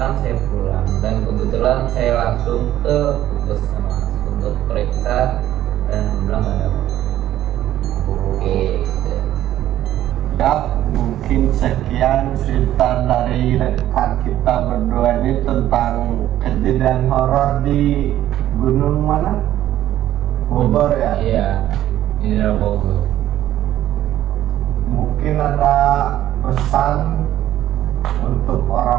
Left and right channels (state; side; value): quieter; left; 12.9 dB